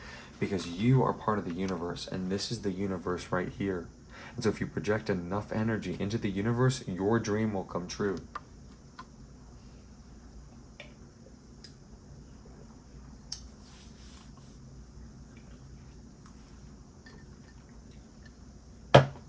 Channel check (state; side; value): identical; both; correlation 1.00